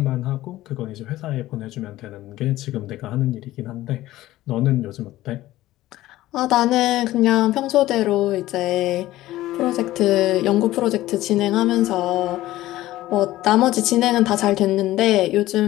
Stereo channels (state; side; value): quieter; right; 15.8 dB